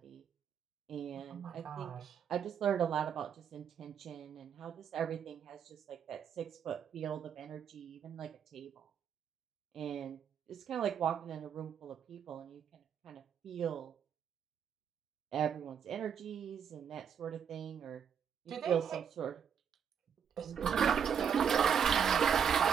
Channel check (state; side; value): quieter; left; 7.7 dB